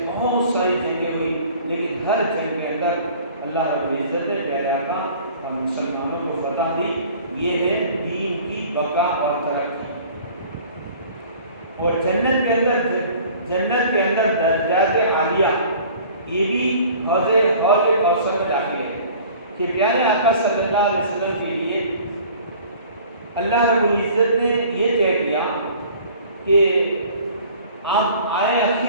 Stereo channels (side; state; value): both; inverted; correlation -0.48